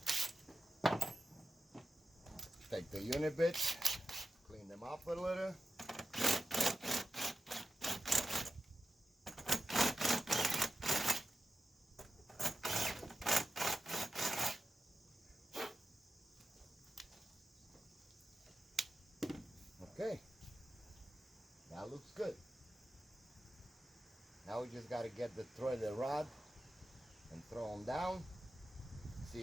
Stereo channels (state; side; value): normal; both; correlation 0.92